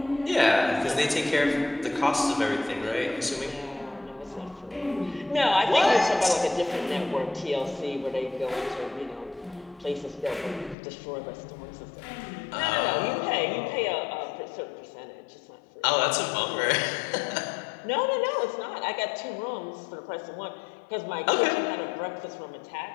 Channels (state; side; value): drops out; right; at 10.8 s